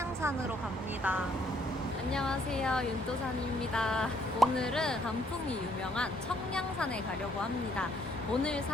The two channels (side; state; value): both; normal; correlation 0.67